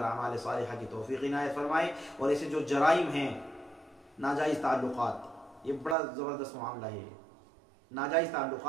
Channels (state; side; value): drops out; left; at 6.0 s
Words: अमाल सालिहा की तौफीक इनायत फरमाए। और ऐसे जो जराइम हैं, नाजायज़ ताल्लुकात, ये बड़ा ज़बरदस्त मामला है। नाजायज़